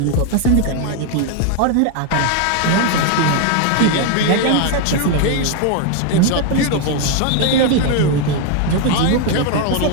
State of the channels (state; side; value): different; both; correlation 0.01